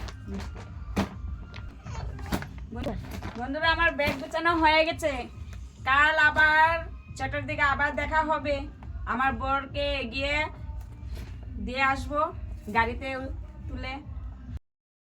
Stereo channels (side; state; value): both; identical; correlation 1.00